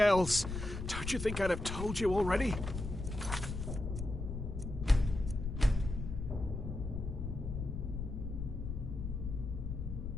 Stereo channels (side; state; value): left; noise; rumble, 5 dB below the sound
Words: Don't you think I'd have told you already?